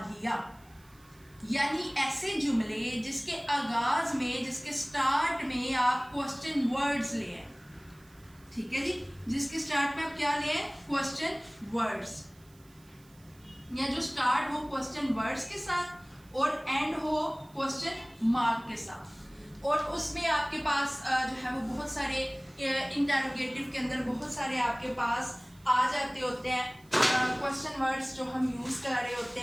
यानी ऐसे जुमले जिसके आगाज में, जिसके स्टार्ट में आप क्वेश्चन वर्ड्स ले हैं। ठीक है जी। जिसके स्टार्ट में आप क्या ले हैं? क्वेश्चन वर्ड्स, या जो स्टार्ट हो क्वेश्चन वर्ड्स के साथ और एंड हो क्वेश्चन मार्क के साथ। और उसमें आपके पास जो है वो बहुत सारे इंटरोगेटिव के अंदर बहुत सारे आपके पास आ जाते होते हैं क्वेश्चन वर्ड्स जो हम यूज़ कर रहे होते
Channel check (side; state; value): right; noise; hiss, 28 dB below the sound